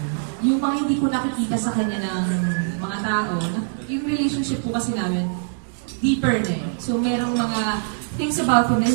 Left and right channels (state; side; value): silent; left; digital silence